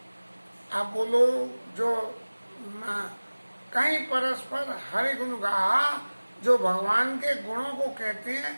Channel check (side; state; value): both; inverted; correlation -1.00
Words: आप बोलो जो कहीं परस्पर हरि गुण गाहा, जो भगवान के गुणों को कहते हैं